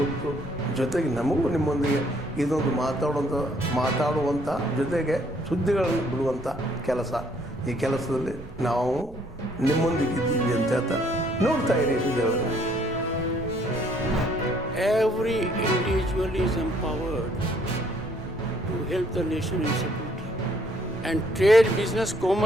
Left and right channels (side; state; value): right; noise; rumble, 18 dB below the sound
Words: ಗೊತ್ತು. ಜೊತೆಗೆ ನಮಗೂ ನಿಮ್ಮೊಂದಿಗೆ ಇದೊಂದು ಮಾತಾಡುವಂಥ ಜೊತೆಗೆ ಸುದ್ದಿಗಳನ್ನು ಬಿಡುವಂಥ ಕೆಲಸ. ಈ ಕೆಲಸದಲ್ಲಿ ನಾವು ನಿಮ್ಮೊಂದಿಗೆ ಇದ್ದೀವಿ ಅಂತ ಹೇಳ್ತಾ ನೋಡ್ತಾ ಇರಿ ಸುದ್ದಿಗಳನ್ನು. Every individual is empowered to help the nation in security. And trade, business,